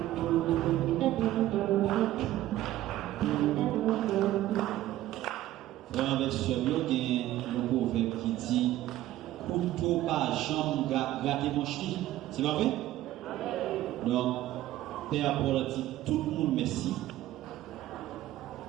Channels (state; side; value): quieter; left; 14.5 dB